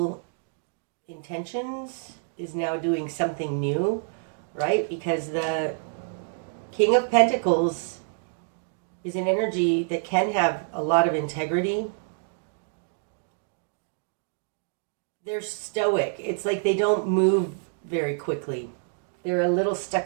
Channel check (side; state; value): left; silent; digital silence